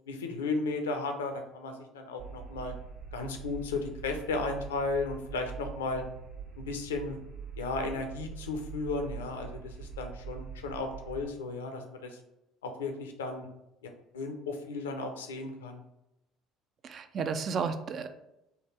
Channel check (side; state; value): both; normal; correlation 0.30